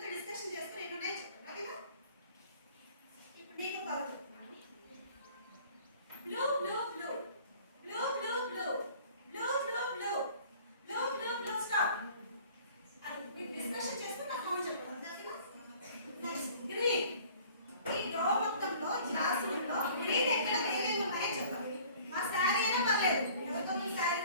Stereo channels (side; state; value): both; inverted; correlation -0.51